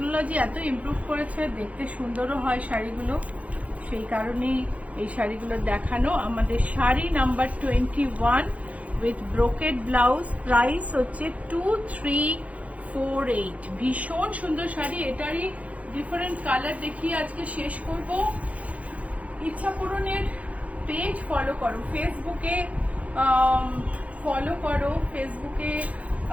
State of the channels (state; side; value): late; left; 0.067 ms